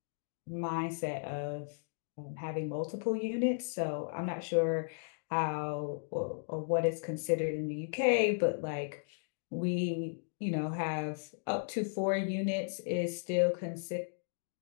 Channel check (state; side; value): silent; right; digital silence